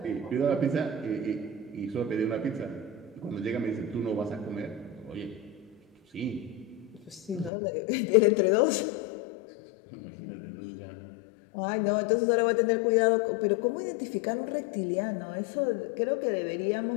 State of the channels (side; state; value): right; drops out; at 7.5 s